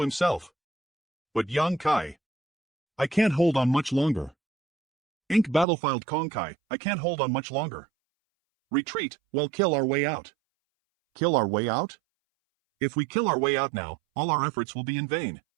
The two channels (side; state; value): left; drops out; at 5.7 s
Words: himself. But Yang Kai. I can't hold on much longer. Ink Battlefield Konkai, I can't hold on much longer. Retreat, well kill our way out. Kill our way out? If we kill our way out now, all our efforts will be in vain.